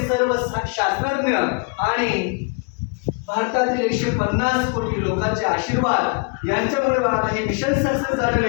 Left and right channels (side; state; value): right; quieter; 33.3 dB